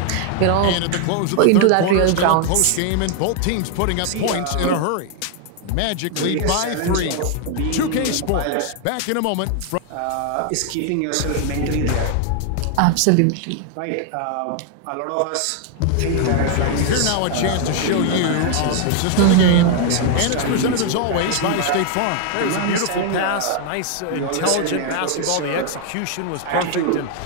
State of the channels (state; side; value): different; both; correlation 0.00